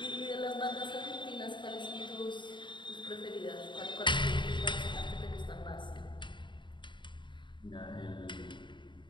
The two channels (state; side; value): late; right; 0.23 ms